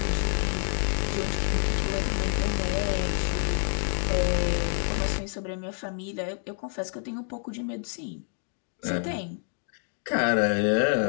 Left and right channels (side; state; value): right; silent; 56 dB below the other